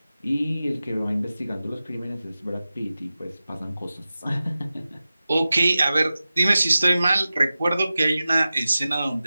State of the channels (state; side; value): inverted; both; correlation -0.95